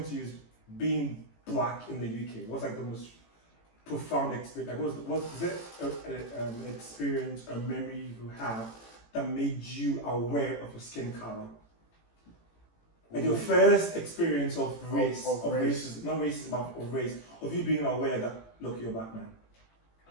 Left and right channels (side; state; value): right; late; 18 ms